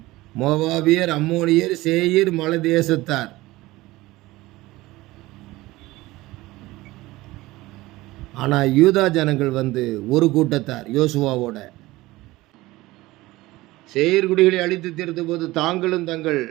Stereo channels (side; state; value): left; quieter; 19.0 dB